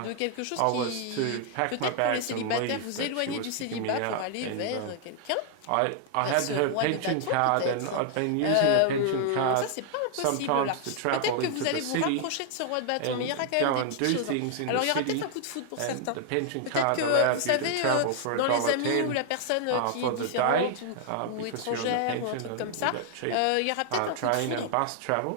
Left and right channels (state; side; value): different; both; correlation 0.00